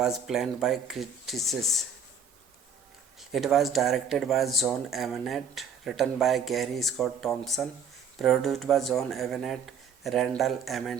planned by critics. It was directed by John Avnet, written by Gary Scott Thompson, produced by John Avnet, Randall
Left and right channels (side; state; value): left; quieter; 5.8 dB